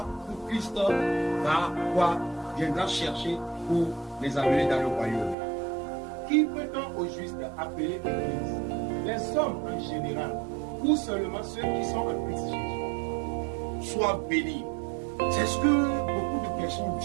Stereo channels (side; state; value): left; drops out; at 5.4 s